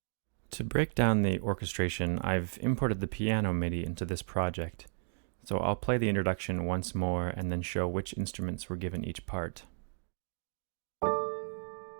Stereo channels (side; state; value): left; silent; digital silence